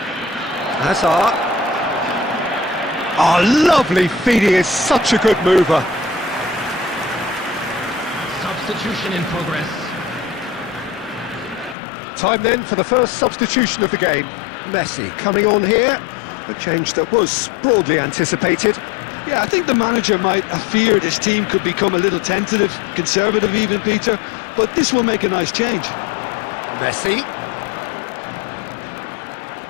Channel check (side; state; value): right; drops out; at 11.8 s